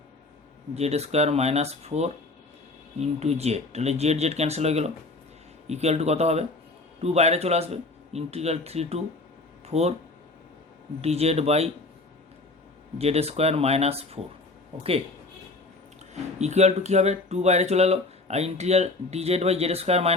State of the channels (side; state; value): right; quieter; 3.2 dB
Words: Z square minus 4 into z, তাহলে জেড জেড ক্যান্সেল হয়ে গেল, ইকুয়াল টু কত হবে 2 বাইরে চলে আসবে, integral 3 to 4 d z by Z square minus 4, okay, equal to কী হবে 2 বাইরে চলে এলো, আর integral d z by Z square